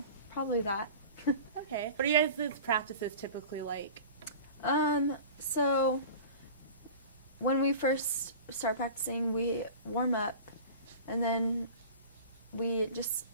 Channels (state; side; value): inverted; both; correlation -0.37